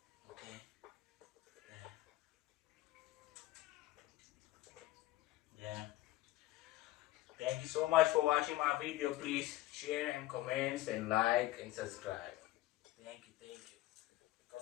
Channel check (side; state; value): right; quieter; 16.5 dB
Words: Okay. Yeah. Thank you so much for watching my video. Please share and comments and like and subscribe. Thank you, thank you.